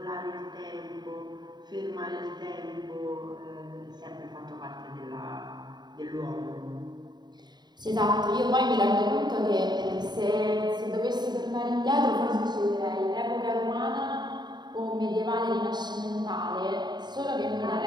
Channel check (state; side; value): late; left; 0.21 ms